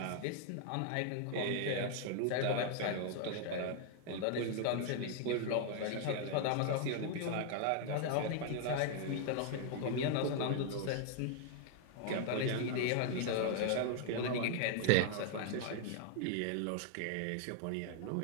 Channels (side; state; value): both; different; correlation 0.00